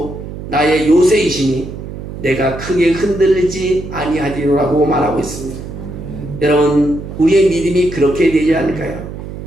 나의 요새이시니 내가 크게 흔들리지 아니하리라고 말하고 있습니다. 여러분, 우리의 믿음이 그렇게 되지 않을까요?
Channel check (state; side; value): noise; right; hum, 10 dB below the sound